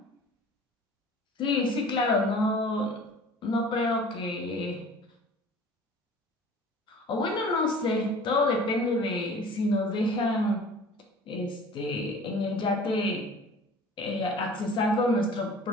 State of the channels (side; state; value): both; normal; correlation 0.45